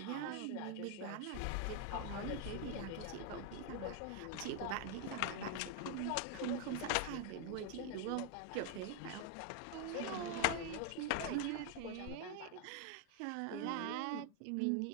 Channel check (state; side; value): different; both; correlation 0.00